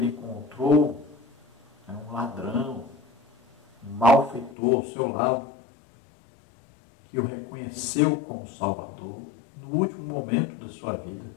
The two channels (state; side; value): drops out; right; at 4.5 s